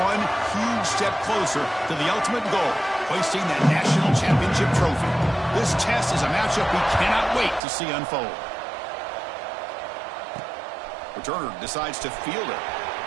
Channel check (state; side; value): drops out; left; at 7.6 s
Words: huge step closer to the ultimate goal, hoisting that national championship trophy. This test is a matchup we cannot wait to see unfold. Returner decides to field it.